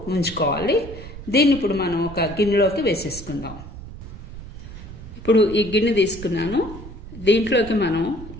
ఉంచుకోవాలి. దీన్ని ఇప్పుడు మనం ఒక గిన్నెలోకి వేసేసుకుందాం. ఇప్పుడు ఈ గిన్నె తీసుకున్నాను. దీంట్లోకి మనం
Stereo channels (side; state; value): right; noise; rumble, 13 dB below the sound